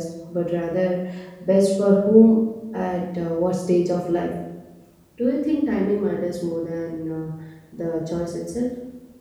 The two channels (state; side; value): identical; both; correlation 1.00